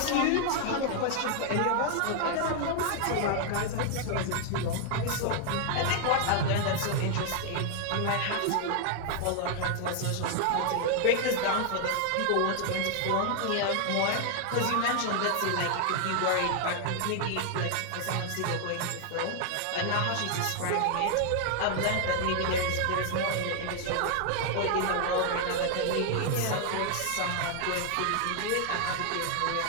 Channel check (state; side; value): different; both; correlation 0.00